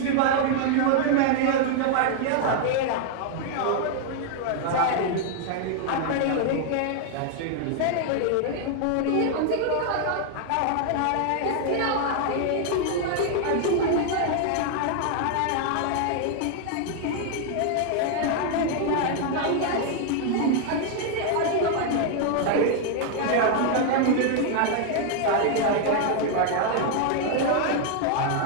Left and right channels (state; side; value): different; both; correlation 0.00